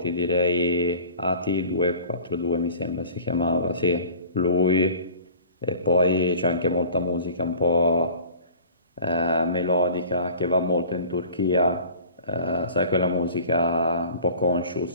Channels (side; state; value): both; inverted; correlation -0.44